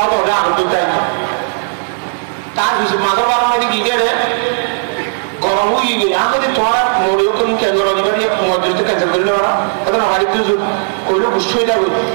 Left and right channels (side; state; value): left; silent; digital silence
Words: তো ওটা আনন্দ চাই তার কিছু মাদরবার মধ্যে গিয়ে গরম হয়ে গিয়ে আমাদের তোমার মরেও তুমি ক্যান্সার দিবে মজুরিতে ক্যান্সেল করে নেওয়া তখন আমার একটু কইলে বুঝতে হয়ে যাবে